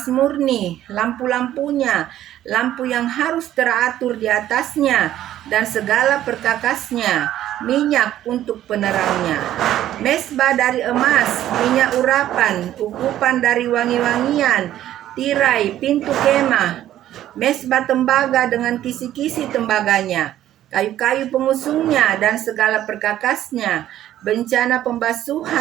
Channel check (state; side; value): quieter; left; 12.6 dB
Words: murni, lampu-lampunya, lampu yang harus teratur di atasnya, dan segala perkakasnya, minyak untuk penerangnya, mesbah dari emas, minyak urapan, ukupan dari wangi-wangian, tirai pintu kemah, mesbah tembaga dengan kisi-kisi tembaganya, kayu-kayu pengusungnya dan segala perkakasnya, bencana